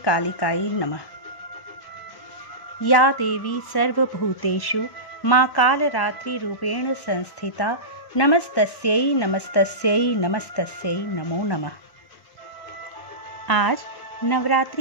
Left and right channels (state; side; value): late; right; 1.1 ms